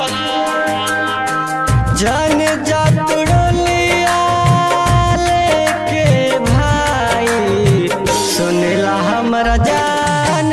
जन जतुड़लिया लेके भाई सुनला हमरा जान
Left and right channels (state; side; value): identical; both; correlation 1.00